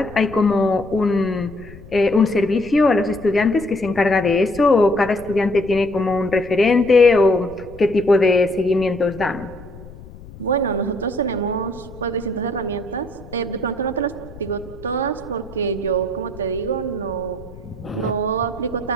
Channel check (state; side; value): noise; left; rumble, 18 dB below the sound